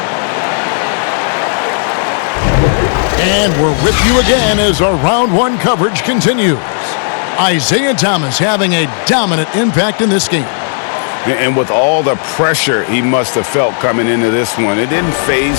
And we're with you again as our round 1 coverage continues. Isaiah Thomas having a dominant impact in this game. And with all the pressure he must have felt coming into this one, it didn't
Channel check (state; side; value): silent; right; digital silence